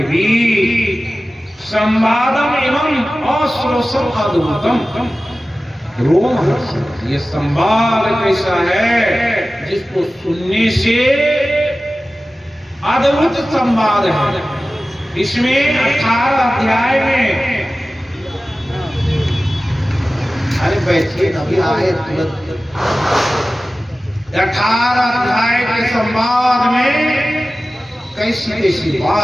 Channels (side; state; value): both; normal; correlation 0.96